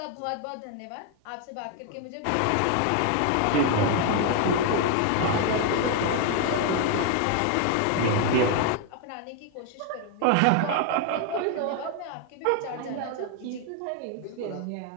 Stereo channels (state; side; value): different; both; correlation 0.01